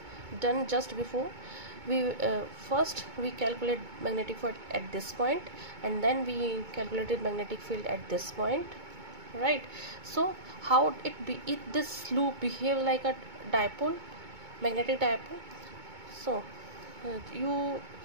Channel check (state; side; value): late; left; 2.2 ms